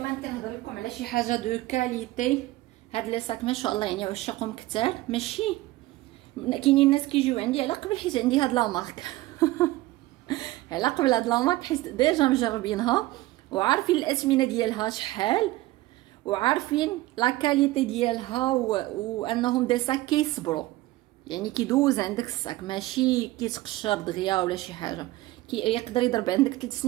كنهضر لكم على شي حاجه دو كاليتي. هاد لي ساك ما شاء الله يعني عشاقهم كثار، ماشي كاينين الناس كيجيو عندي على قبل حيت عندي هاد لا مارك على قبل هاد لا مارك حيت ديجا مجربينها وعارفين الاثمنه ديالها شحال، وعارفين لا كاليتي ديالها وانهم دي ساك كيصبروا، يعني كيدوز عندك الساك ماشي كيتقشر دغيا ولا شي حاجه، يقدر يضرب عندك 3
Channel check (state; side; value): quieter; left; 18.0 dB